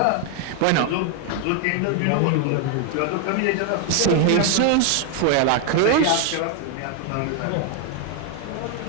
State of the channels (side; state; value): both; different; correlation 0.00